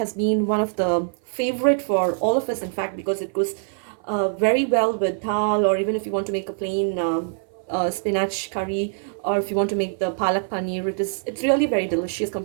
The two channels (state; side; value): silent; left; 58 dB below the other